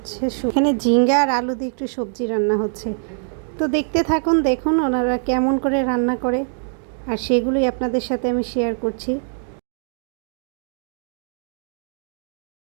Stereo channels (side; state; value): left; silent; digital silence